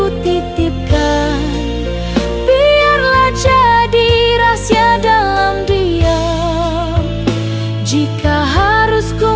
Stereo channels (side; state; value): both; identical; correlation 1.00